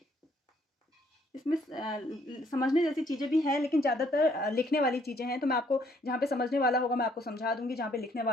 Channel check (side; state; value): both; normal; correlation 0.66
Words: इसमें समझने जैसी चीज़ें भी हैं, लेकिन ज़्यादातर लिखने वाली चीज़ें हैं। तो मैं आपको जहाँ पे समझने वाला होगा मैं आपको समझा दूंगी, जहाँ पे लिखने